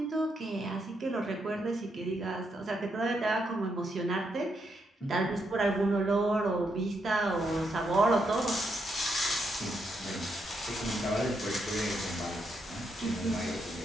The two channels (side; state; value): both; normal; correlation 0.79